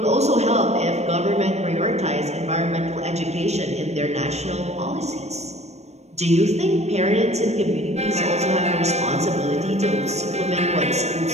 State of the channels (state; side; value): late; left; 0.32 ms